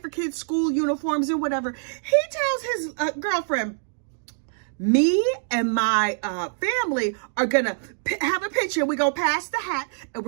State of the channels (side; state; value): left; silent; digital silence